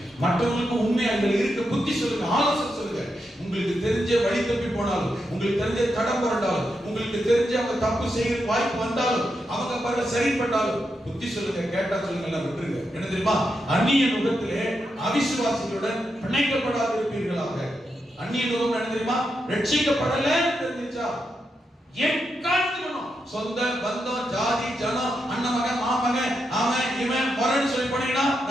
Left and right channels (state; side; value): normal; both; correlation 0.85